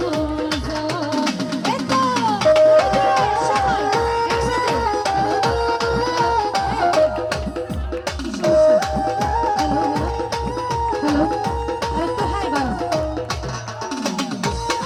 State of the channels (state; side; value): identical; both; correlation 1.00